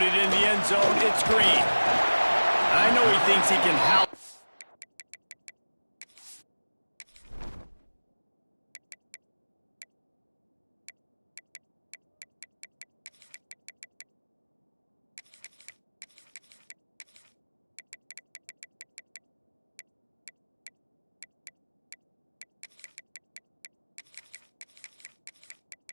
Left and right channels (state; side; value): inverted; both; correlation -1.00